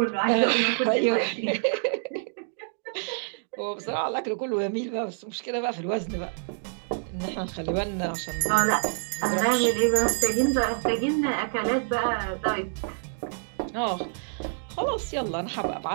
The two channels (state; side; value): silent; left; digital silence